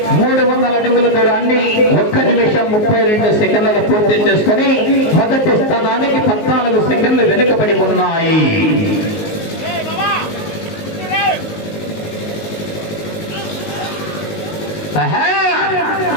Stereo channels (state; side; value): late; right; 19 ms